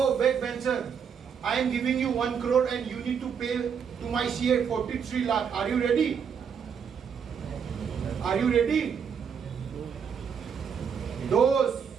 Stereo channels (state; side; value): quieter; left; 7.0 dB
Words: back bencher, I am giving you 1 crore and you need to pay to my CA 43 lakh. Are you ready? Are you ready? दोस्त,